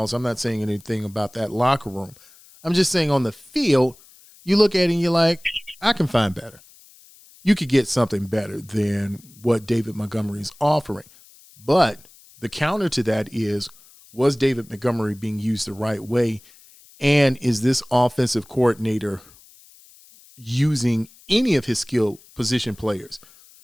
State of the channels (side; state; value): left; noise; hiss, 25 dB below the sound